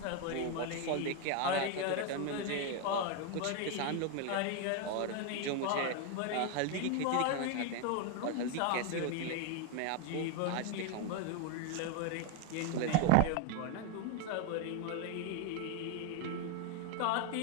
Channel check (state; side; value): different; both; correlation 0.01